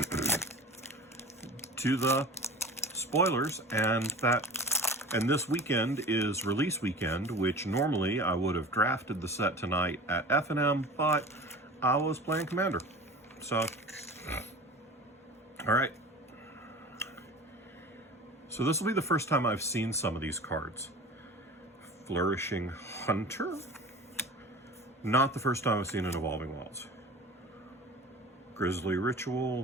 spoilers, and this weekend is release weekend, which normally I would have drafted the set tonight at F&M, but I was playing Commander. So, all right. So this will be the first time I've seen some of these cards. Flourishing Hunter. Not the first time I've seen an Evolving Wilds. Grisly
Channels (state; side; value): normal; both; correlation 0.37